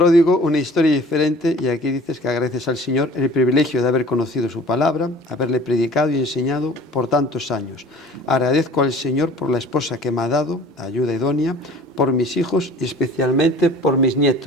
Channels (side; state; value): both; normal; correlation 0.47